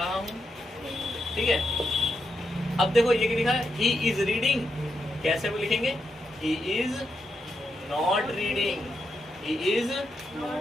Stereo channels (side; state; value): both; normal; correlation 0.83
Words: हूं, ठीक है। अब देखो ये क्या लिखा है, ही इज रीडिंग। कैसे वो लिखेंगे? He is not reading, he is